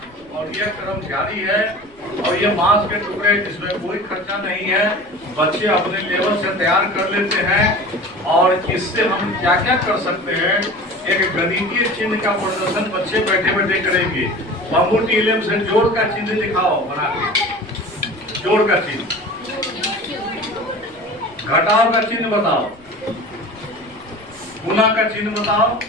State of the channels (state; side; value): noise; left; rumble, 29 dB below the sound